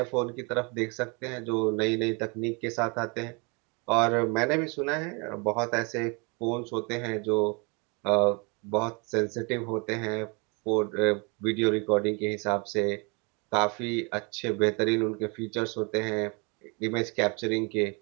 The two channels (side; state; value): left; quieter; 31.4 dB